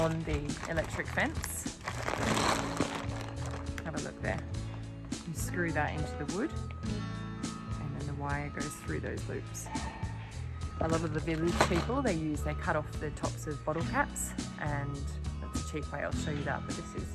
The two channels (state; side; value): identical; both; correlation 1.00